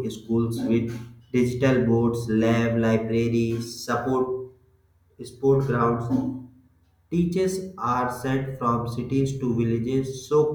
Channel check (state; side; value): identical; both; correlation 1.00